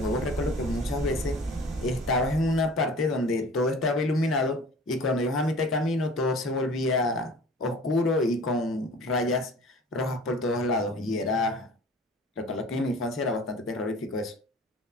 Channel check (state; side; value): normal; both; correlation 0.44